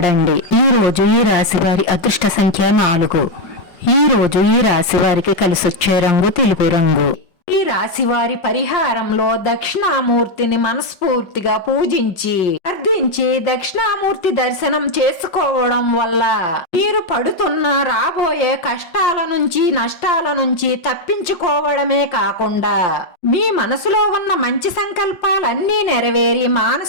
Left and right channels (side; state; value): right; late; 5.3 ms